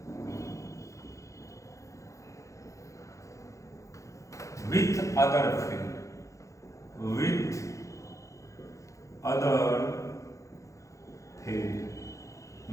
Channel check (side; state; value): right; late; 0.15 ms